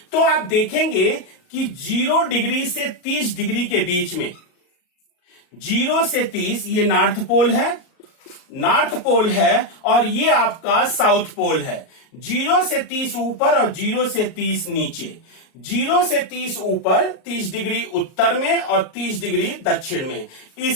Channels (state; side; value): late; right; 38 ms